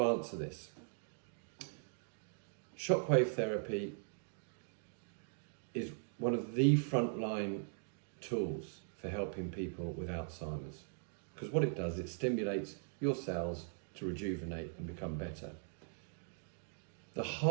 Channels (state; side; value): silent; left; digital silence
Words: answer this, shockwave therapy is one of the frontline tools for helping people with Alzheimer's. Because what it does, it stimulates your cells to rejuvenate and become better. The